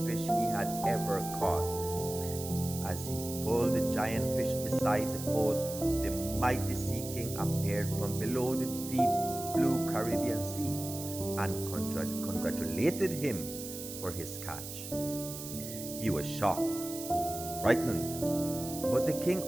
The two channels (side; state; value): right; noise; hiss, 9 dB below the sound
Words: fish he had ever caught. As he pulled the giant fish beside the boat, the mighty Sea King appeared from below the deep blue Caribbean Sea and congratulated him for his catch. He was shocked, frightened, but the king